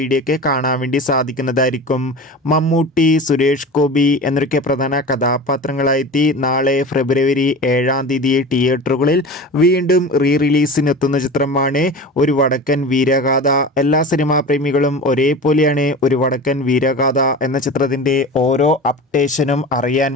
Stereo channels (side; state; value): both; normal; correlation 0.33